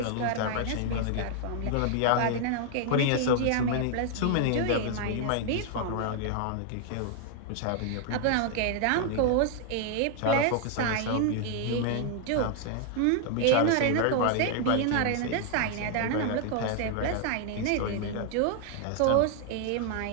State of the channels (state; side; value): different; both; correlation 0.00